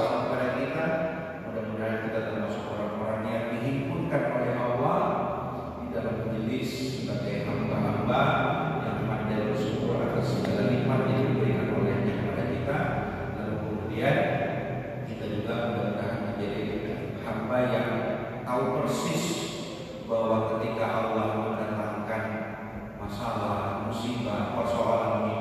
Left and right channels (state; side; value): identical; both; correlation 1.00